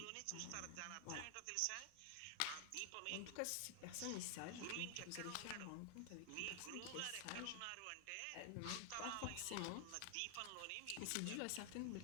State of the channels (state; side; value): different; both; correlation 0.00